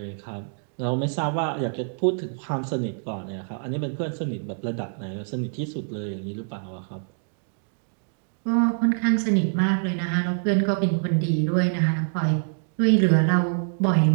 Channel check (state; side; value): silent; left; digital silence